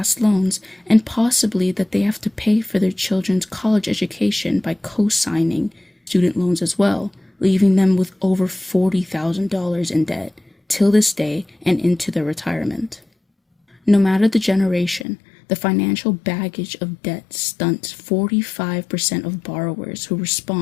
loans and possibly that they have to pay for their children's college education by co-signing student loans as well, leaving them with over $40,000 in debt till this day and into their retirement. No matter the generation, the financial baggage of debt stunts 45% of borrowers who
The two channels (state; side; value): drops out; right; at 15.1 s